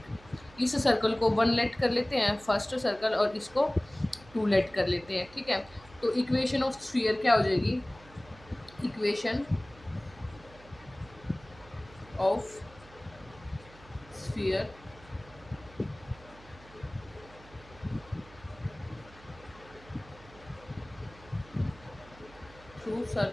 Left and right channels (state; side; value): noise; right; hum, 22 dB below the sound